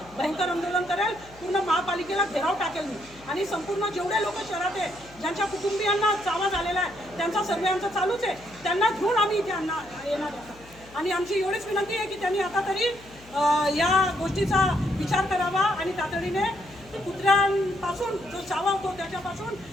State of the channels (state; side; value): noise; left; hum, 23 dB below the sound